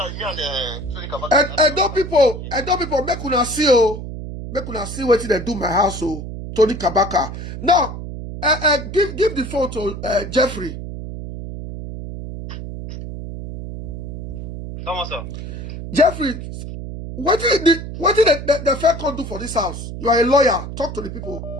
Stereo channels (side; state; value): right; noise; hum, 8 dB below the sound